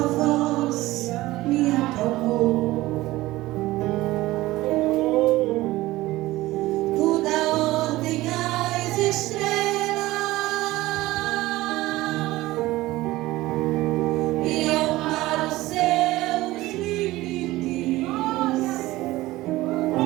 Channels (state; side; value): quieter; left; 17.9 dB